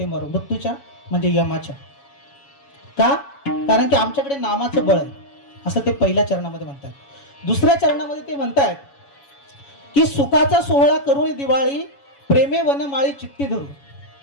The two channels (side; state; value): right; late; 7.2 ms